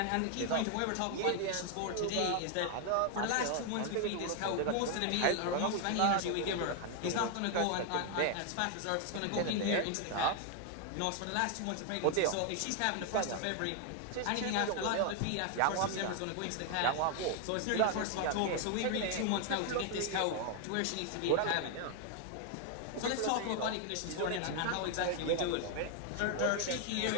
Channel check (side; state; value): both; different; correlation 0.00